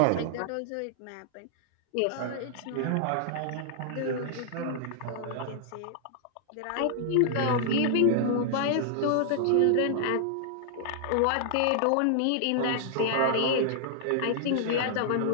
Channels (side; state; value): both; different; correlation -0.01